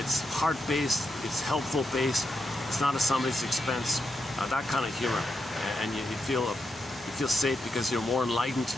heart-based, it's helpful-based, it's not at somebody's expense. That kind of humor, and you feel safe because you're more enlightened,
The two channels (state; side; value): normal; both; correlation 0.84